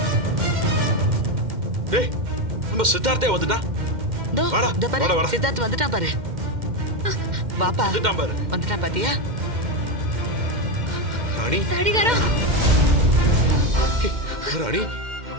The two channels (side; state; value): left; late; 2.1 ms